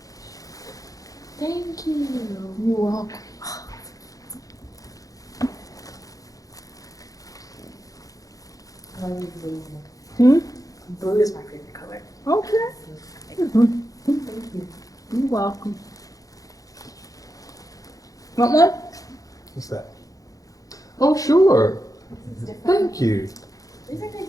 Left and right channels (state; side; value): late; right; 0.17 ms